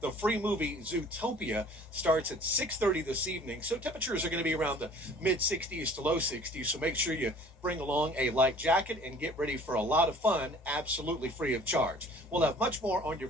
the free movie Zootopia starts at 6:30 this evening, so temperatures are going to be around the mid-60s to low 60s, so make sure you bring along a light jacket and get ready for a lot of fun, absolutely free of charge. We'll have much more on your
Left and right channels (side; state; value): both; normal; correlation 0.50